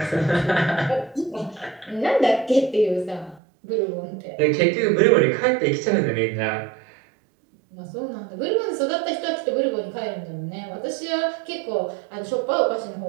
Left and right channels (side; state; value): left; drops out; at 3.4 s